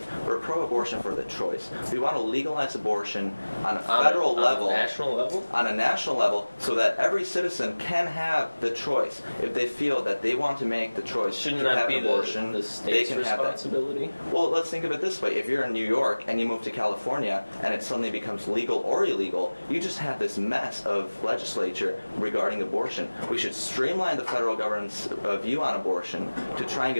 We're pro-abortion for the choice. We want to legalize abortion on a federal level. On a national level? On a national level, so that every citizen can have the choice. If they feel that they want to make the choice to have an abortion, the state's they can responsibility? have that. Well, let's think of it this way. If you're in New York and you move to California and it suddenly becomes legal or illegal, you just have this mess of legislature regarding abortion. We should streamline the federal government's view on abortion to try and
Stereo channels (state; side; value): inverted; both; correlation -1.00